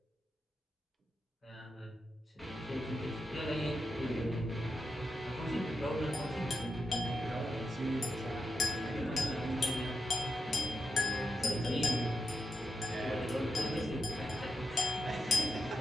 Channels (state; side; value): normal; both; correlation 0.87